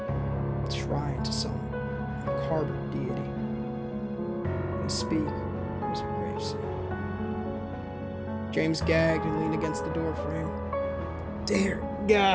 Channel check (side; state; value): both; identical; correlation 1.00